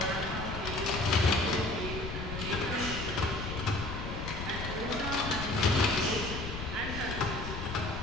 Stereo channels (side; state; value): left; noise; rumble, 6 dB below the sound